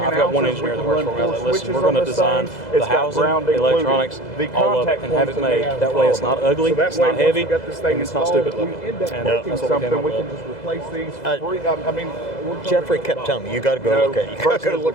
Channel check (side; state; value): right; late; 2.0 ms